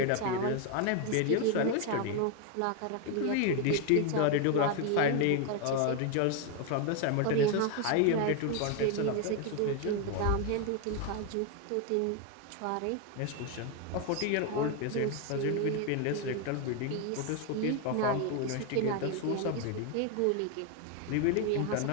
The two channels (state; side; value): different; both; correlation 0.01